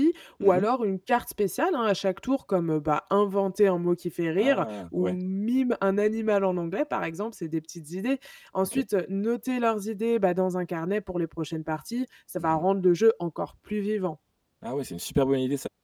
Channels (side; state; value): both; identical; correlation 1.00